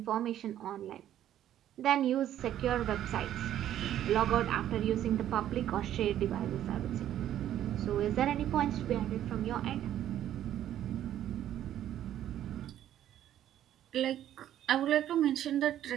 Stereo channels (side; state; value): left; quieter; 11.6 dB